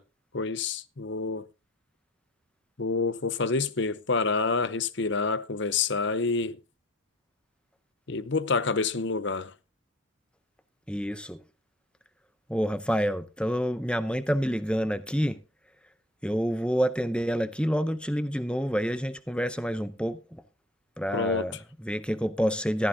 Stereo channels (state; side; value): normal; both; correlation 0.49